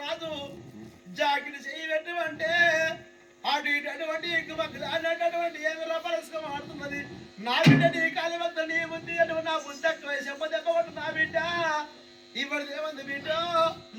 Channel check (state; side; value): identical; both; correlation 1.00